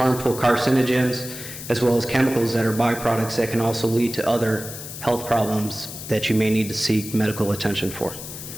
carcinogens as well as chemicals that are byproducts that can also lead to other health problems that you may need to seek medical attention for.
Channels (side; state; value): left; noise; hiss, 11 dB below the sound